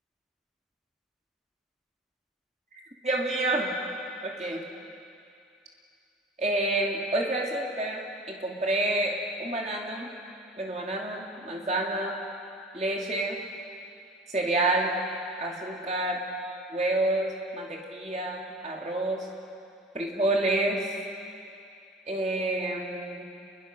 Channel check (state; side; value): normal; both; correlation 0.38